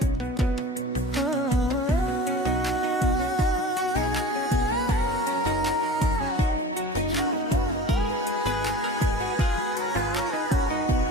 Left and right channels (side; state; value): both; normal; correlation 0.37